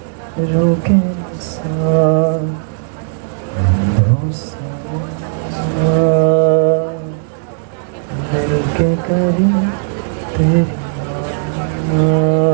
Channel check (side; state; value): left; silent; digital silence